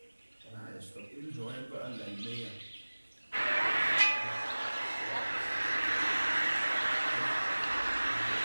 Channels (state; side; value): inverted; both; correlation -1.00